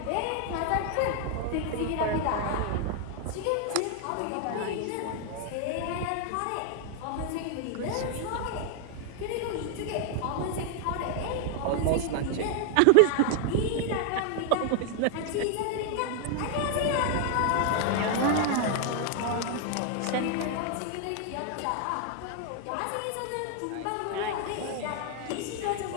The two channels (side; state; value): both; different; correlation 0.00